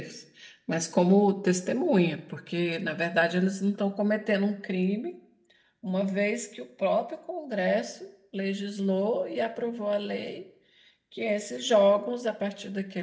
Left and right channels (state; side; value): identical; both; correlation 1.00